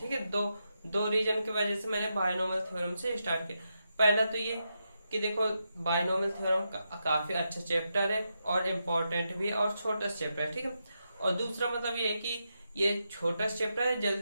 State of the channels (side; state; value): both; inverted; correlation -0.85